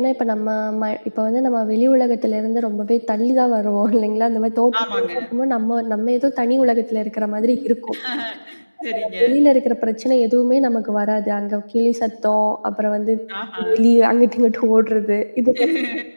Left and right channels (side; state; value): both; inverted; correlation -1.00